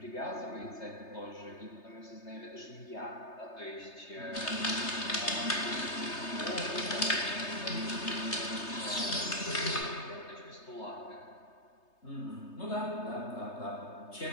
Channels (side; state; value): right; late; 3.3 ms